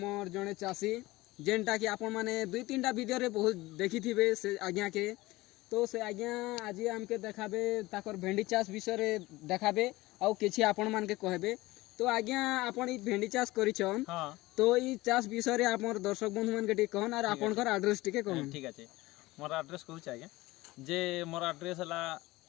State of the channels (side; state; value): right; quieter; 19.5 dB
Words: जड़े चाषी जेनटा कि आपण मैंने 2-3टा वीडियो रे बहुत देखी थे से आज्ञा के। तो से आज्ञा आज आमके देखाबे ताकर भेंडी चाष विषय रे देखाबे आउ किछि आपण मान के कहबे। तो आज्ञा आपण ई भेंडी चाष करिछन तो ई चाष विषय रे आपन दर्शक बंधु मान के टी कहन और आपनकर एड्रेस टी के कहन। ठीक আছে मोर एड्रेस कहू आज्ञा जे मोर एड्रेस हला